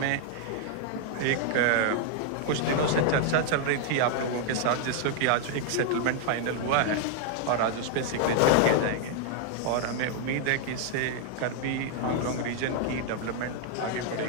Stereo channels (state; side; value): different; both; correlation 0.00